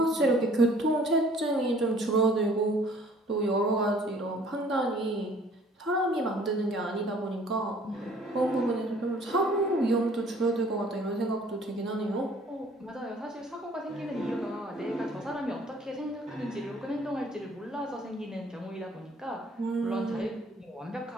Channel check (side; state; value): both; normal; correlation 0.55